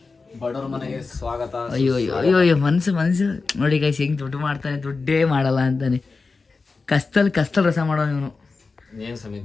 ಬಡವ್ರ ಮನೆಗೆ ಸ್ವಾಗತ. ಅಯ್ಯೋ ಮನ್ಸು ನೋಡಿ ಗೈಸ್, ಹೆಂಗೆ ದುಡ್ಡು ಮಾಡ್ತಾನೆ, ದುಡ್ಡೇ ಮಾಡಲ್ಲ ಅಂತಾನೆ. ಕಸ್ತಲ್ ರಸ ಮಾಡೋ ಇವನು. ಏನ್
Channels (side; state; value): right; quieter; 4.2 dB